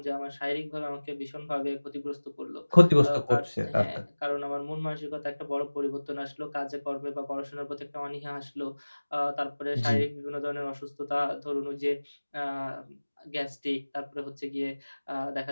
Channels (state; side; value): inverted; both; correlation -1.00